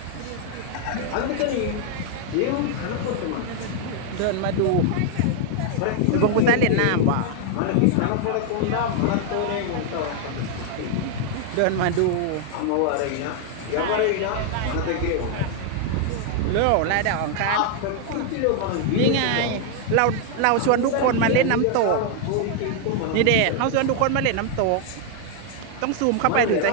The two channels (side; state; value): both; different; correlation 0.00